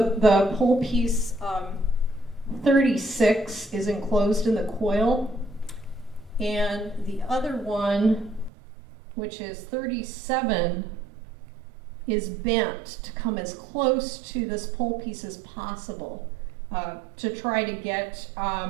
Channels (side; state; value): left; drops out; at 8.5 s